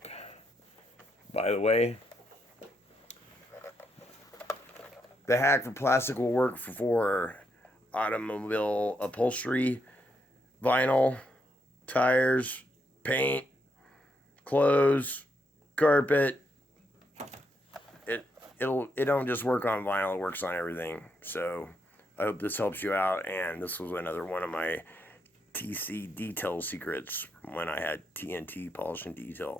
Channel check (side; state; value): both; normal; correlation 0.79